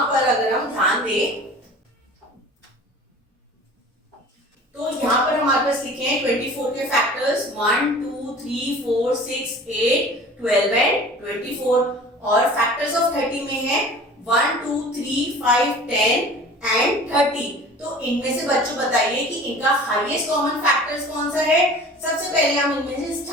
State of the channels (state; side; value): normal; both; correlation 0.43